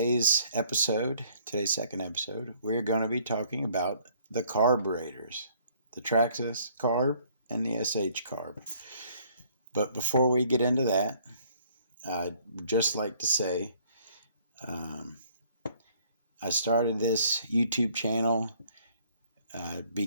second episode, we're going to be talking about the carburetors, the Traxxas carb and the SH carb. But before we get into that, I'd just like to say I started this YouTube channel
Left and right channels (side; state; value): both; inverted; correlation -0.61